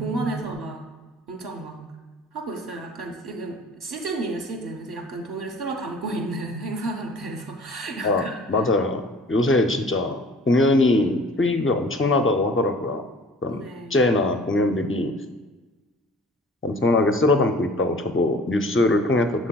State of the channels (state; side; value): normal; both; correlation 0.49